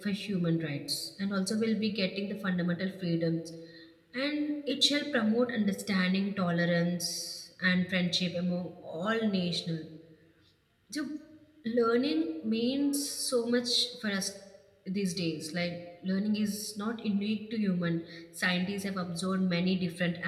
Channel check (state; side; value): identical; both; correlation 1.00